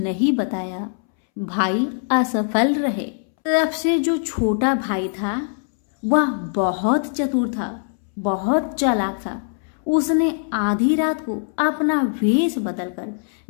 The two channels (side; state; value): right; silent; 64 dB below the other